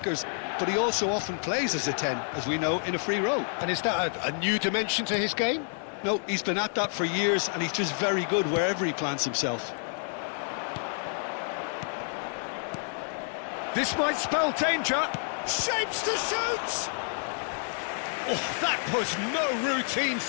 But he also often plays as a 10, as we know, in a free role. And is that a new dimension to his game? No, he's been at that for years, and he's just very good wherever he plants himself. This might spell danger. Shapes to shoot! Oh, that was no routine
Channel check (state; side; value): silent; right; 59 dB below the other